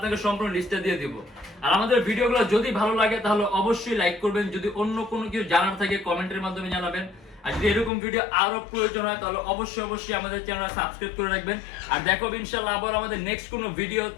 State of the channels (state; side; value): drops out; right; at 7.9 s